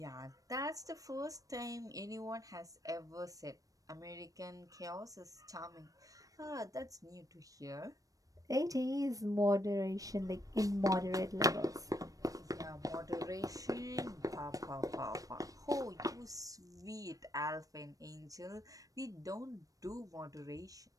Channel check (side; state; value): left; late; 0.17 ms